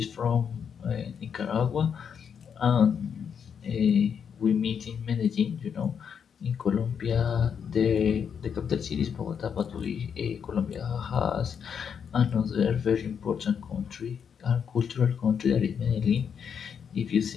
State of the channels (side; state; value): right; quieter; 7.3 dB